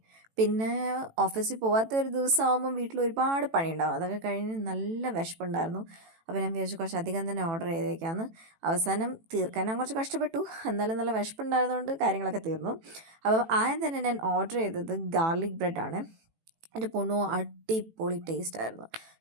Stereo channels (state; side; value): late; left; 18 ms